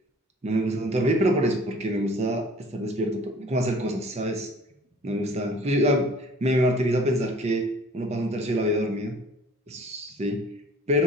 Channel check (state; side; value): normal; both; correlation 0.50